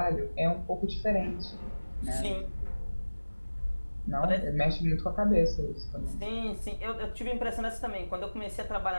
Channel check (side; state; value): both; inverted; correlation -1.00